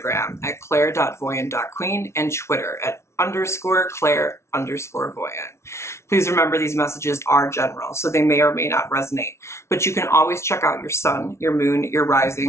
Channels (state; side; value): late; right; 0.13 ms